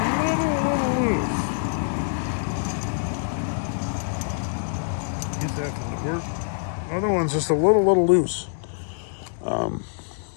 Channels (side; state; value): right; silent; digital silence